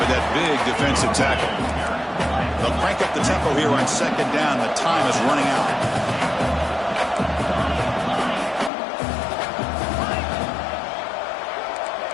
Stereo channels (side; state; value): right; drops out; at 8.7 s